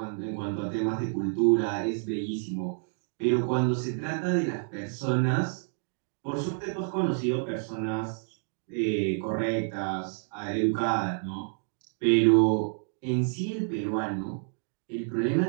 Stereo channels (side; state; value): left; silent; 59 dB below the other